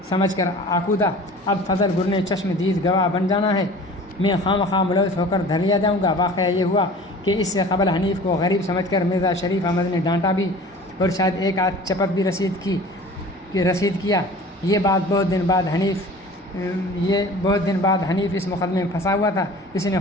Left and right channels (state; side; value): normal; both; correlation 0.43